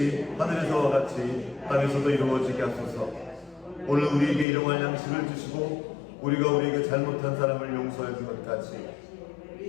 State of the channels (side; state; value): right; drops out; at 4.5 s